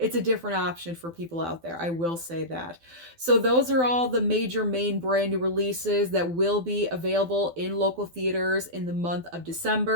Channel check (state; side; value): late; left; 12 ms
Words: a different option for people out there, I will say that. So those are all the major main brand new releases that will be available in local theaters in the month of